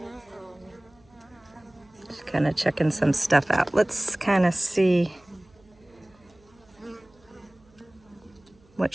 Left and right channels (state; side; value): noise; right; hum, 30 dB below the sound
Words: She's kind of checking some stuff out. Let's kind of see what